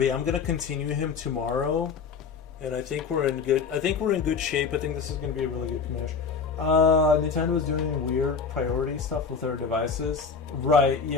I'm gonna continue him tomorrow, and I think we're in good shape. I think this is gonna be a really good commish. Nintendo is doing weird priority stuff with their devices. Right,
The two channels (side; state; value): right; quieter; 5.4 dB